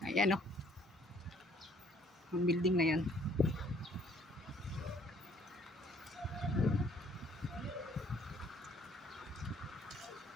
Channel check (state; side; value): normal; both; correlation 0.61